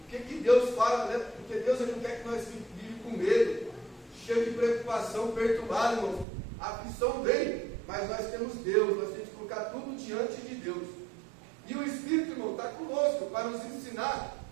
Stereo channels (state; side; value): drops out; left; at 6.2 s